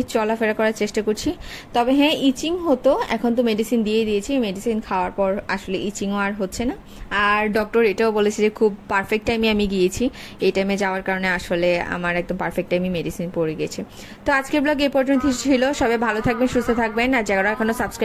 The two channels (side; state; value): both; identical; correlation 1.00